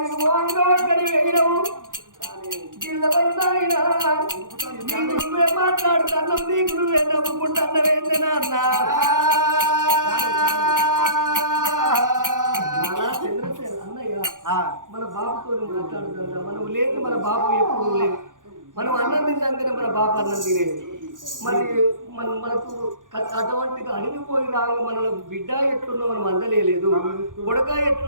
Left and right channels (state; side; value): late; left; 0.88 ms